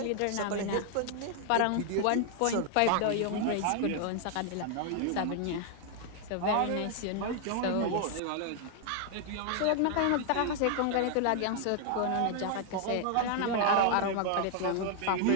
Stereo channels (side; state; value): both; different; correlation 0.00